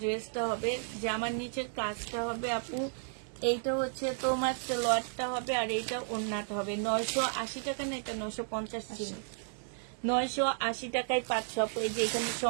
ড্রেসটা হবে, জামার নিচের কাজটা হবে আপু। এইটা হচ্ছে তোমার সালোয়ারটা হবে, আর এইটা ওড়নাটা হবে। 980 টাকা না, এটা 950 ছিল। 980 টাকায় পাচ্ছ আপু। এই যে এখানে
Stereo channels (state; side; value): silent; left; digital silence